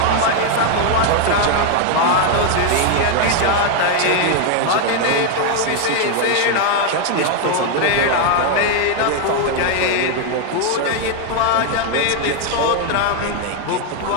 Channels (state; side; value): different; both; correlation 0.01